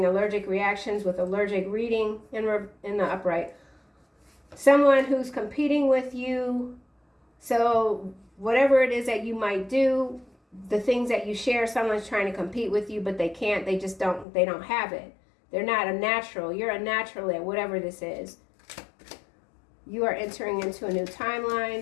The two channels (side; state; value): right; drops out; at 14.2 s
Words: allergic reactions with allergic reading in the upright. Someone who's competing with you. So whatever it is that you might do, the things that you share, someone's trying to compete with you, but they can't. They just don't have it. They're not a natural. You're a natural at whatever this is. You are entering into a new